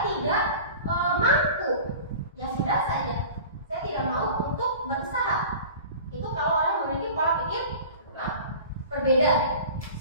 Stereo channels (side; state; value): both; inverted; correlation -0.39